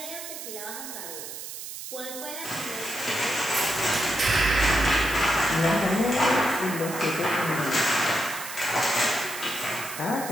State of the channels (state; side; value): noise; right; hiss, 9 dB below the sound